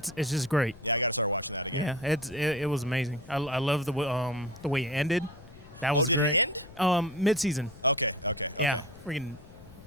just great. Yeah, it was amazing. I love the way it ended. That was great. Mid-season. Yeah, freaking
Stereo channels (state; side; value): noise; left; rumble, 20 dB below the sound